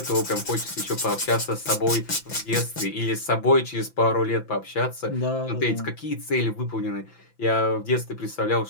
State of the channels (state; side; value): late; right; 5.9 ms